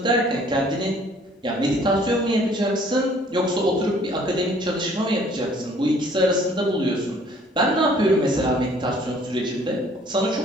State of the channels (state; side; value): normal; both; correlation 0.57